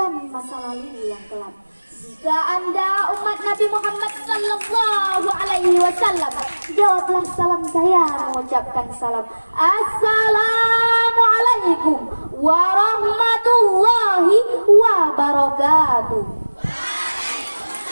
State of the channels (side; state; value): both; inverted; correlation -1.00